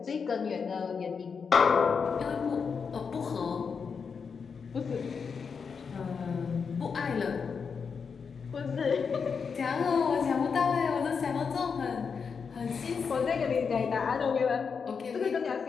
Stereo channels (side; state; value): right; quieter; 5.8 dB